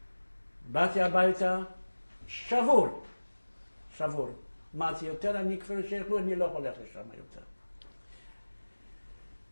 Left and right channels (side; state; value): both; inverted; correlation -1.00